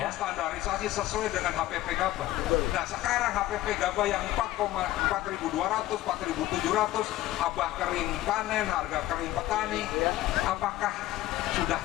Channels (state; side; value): quieter; right; 15.5 dB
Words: standarisasi sesuai dengan HPP Gabah. Nah, sekarang HPP Gabah yang 4.200, 4.700, abah kering panen, harga kering petani, apakah sudah